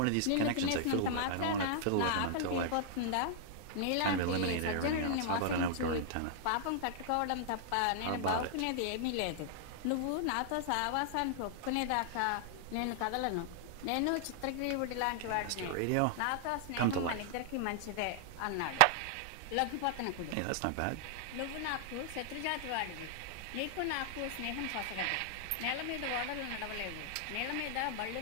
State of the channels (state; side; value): different; both; correlation -0.01